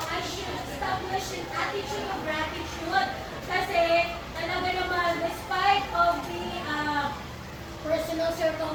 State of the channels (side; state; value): both; identical; correlation 1.00